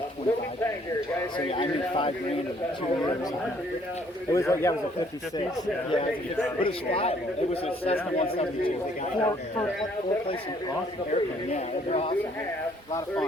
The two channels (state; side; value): normal; both; correlation 0.63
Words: 25 grand. So yeah, I made 5 grand in 2 years. It was like, yeah, it was a 56. Yeah, but it was flyable. It was a Cessna 172. They got four places, awesome airplane. Yeah, it was awesome. A lot of